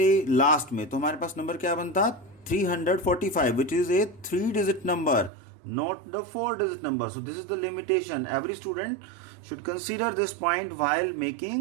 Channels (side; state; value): left; drops out; at 5.3 s